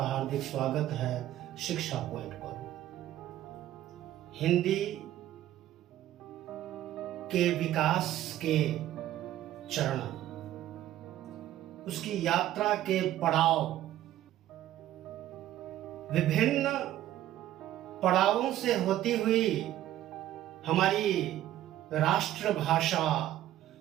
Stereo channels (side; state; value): left; quieter; 13.2 dB